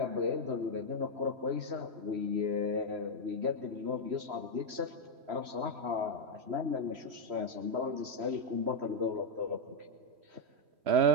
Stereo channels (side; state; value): left; late; 3.1 ms